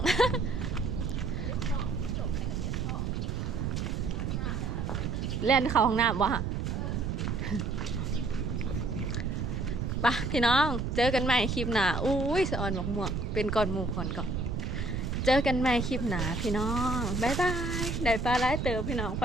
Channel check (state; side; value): noise; right; rumble, 1 dB below the sound